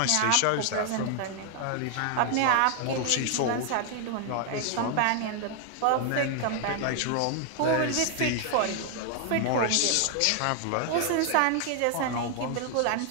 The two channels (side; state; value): both; different; correlation 0.00